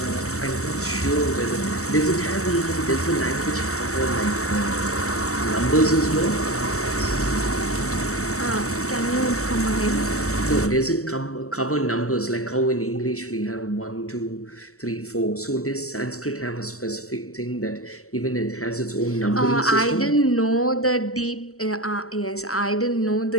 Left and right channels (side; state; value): right; late; 0.64 ms